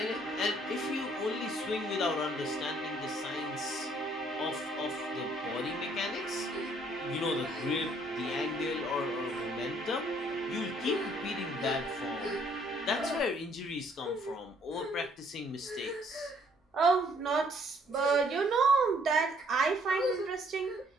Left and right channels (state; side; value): normal; both; correlation 0.64